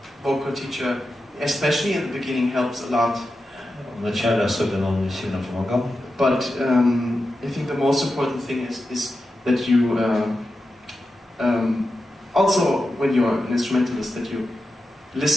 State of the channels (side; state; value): both; normal; correlation 0.90